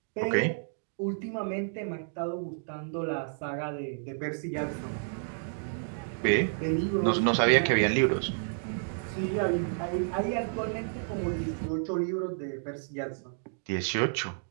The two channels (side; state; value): left; silent; digital silence